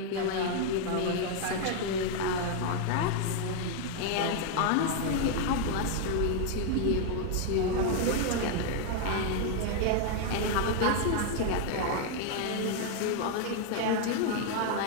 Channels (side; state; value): both; different; correlation 0.00